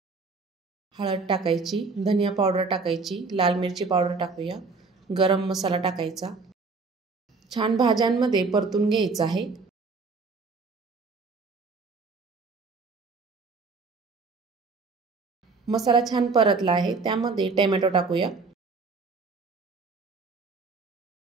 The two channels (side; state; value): left; quieter; 4.3 dB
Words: हळद टाकायची, धनिया पावडर टाकायची, लाल मिरची पावडर टाकूया, गरम मसाला टाकायचा। छान भाज्यांमध्ये परतून घ्यायचं आहे। मसाला छान परतला आहे, त्यामध्ये टोमॅटो टाकूया।